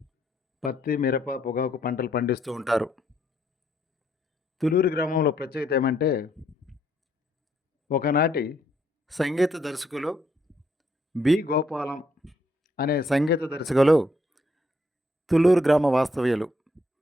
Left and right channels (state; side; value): normal; both; correlation 0.72